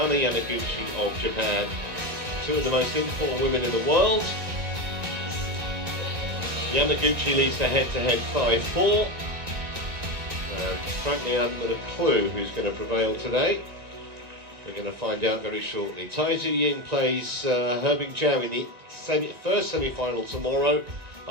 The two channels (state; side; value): late; left; 1.9 ms